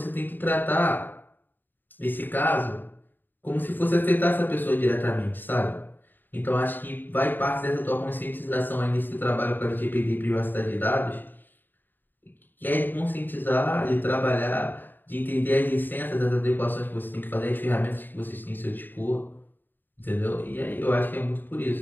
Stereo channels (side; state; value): right; late; 0.091 ms